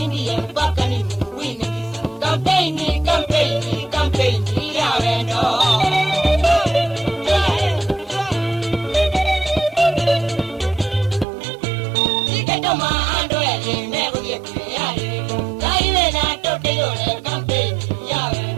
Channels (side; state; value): left; drops out; at 11.2 s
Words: ndiye mpaka ni muwini. Campaign, campaign, campaign, ya vendo.